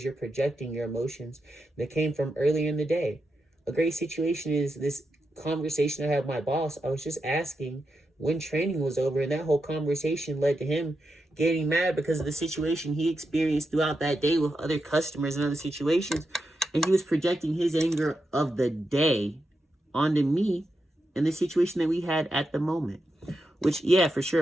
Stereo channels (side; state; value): both; normal; correlation 0.87